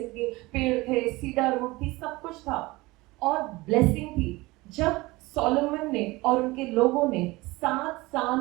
थी, पेड़ थे, सीडर वुड थी, सब कुछ था और ब्लेसिंग थी. जब सोलोमन ने और उनके लोगों ने 7 साल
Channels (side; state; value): left; quieter; 21.4 dB